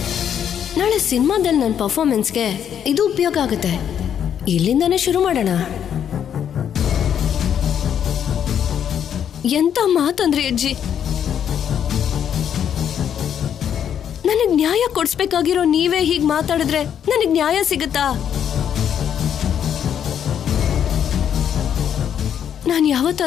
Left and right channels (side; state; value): right; quieter; 9.0 dB